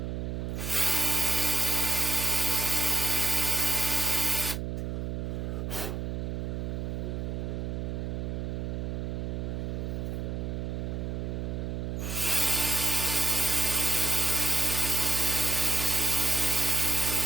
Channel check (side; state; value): right; noise; hum, 3 dB below the sound